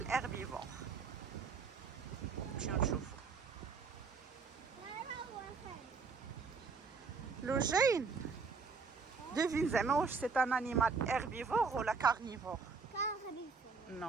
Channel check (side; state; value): left; quieter; 4.9 dB